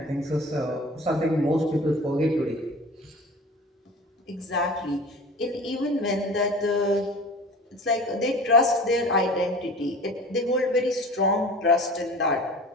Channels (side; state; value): both; normal; correlation 0.39